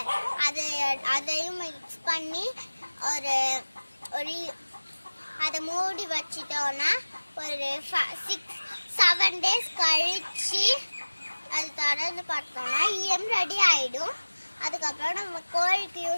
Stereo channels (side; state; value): both; inverted; correlation -1.00